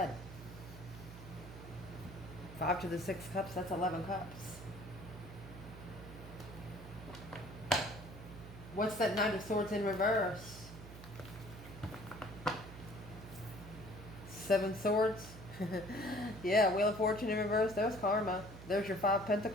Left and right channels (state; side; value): noise; right; hum, 14 dB below the sound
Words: 5 to the 6 Cups, that's 11 Cups. What's that Knight of Swords in reverse? 7 Swords. Yeah, Wheel of Fortune in reverse. There's karma. There's your 5